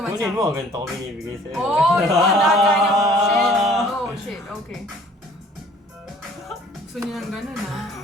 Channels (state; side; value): normal; both; correlation 0.54